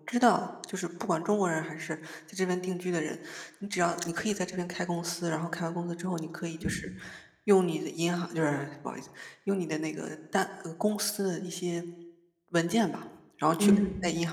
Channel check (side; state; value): both; identical; correlation 1.00